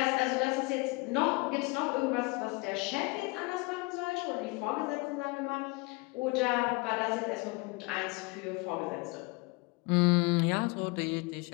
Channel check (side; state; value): right; quieter; 26.9 dB